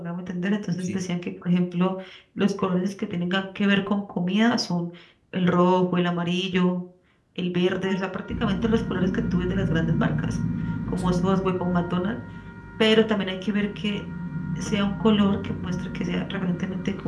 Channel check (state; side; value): identical; both; correlation 1.00